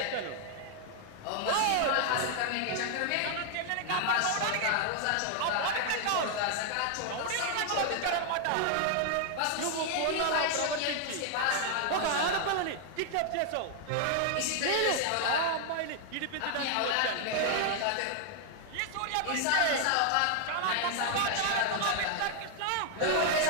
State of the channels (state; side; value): different; both; correlation 0.00